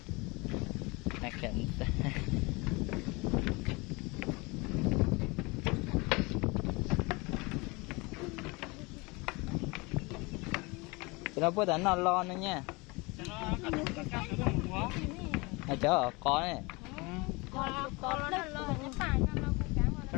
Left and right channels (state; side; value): quieter; right; 25.9 dB